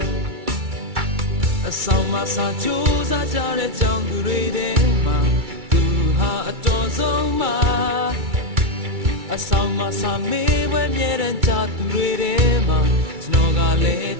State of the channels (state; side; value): late; left; 2.3 ms